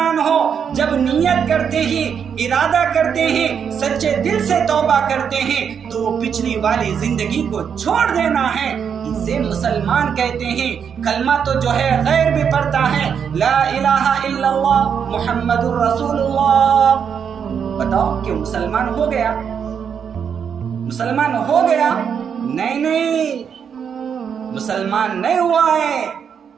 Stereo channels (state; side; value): quieter; left; 7.4 dB